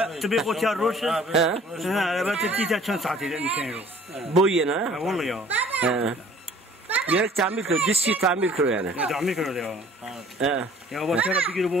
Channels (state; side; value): normal; both; correlation 0.52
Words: tabii o tiyar roş. Evet tiyar çan saati nişanıyor. Boyuna. Vallahi ya. Gerek tamir kırıyor, diski tamir kırıyor yani. Tamir kırıyor ya. Ya bu tiyara bir gün